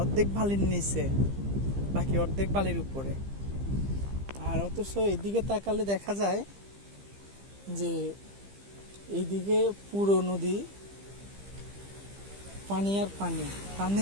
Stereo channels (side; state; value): left; late; 15 ms